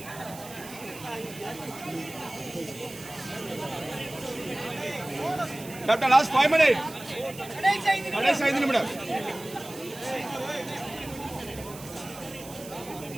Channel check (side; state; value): right; noise; hiss, 15 dB below the sound